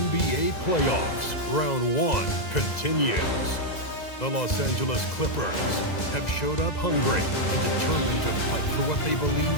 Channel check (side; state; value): right; late; 2.0 ms